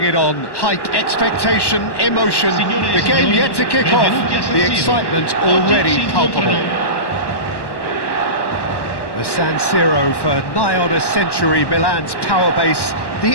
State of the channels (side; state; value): right; late; 1.1 ms